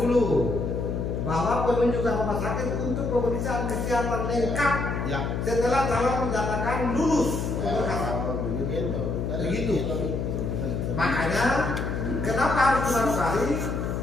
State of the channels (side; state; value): left; noise; hum, 2 dB below the sound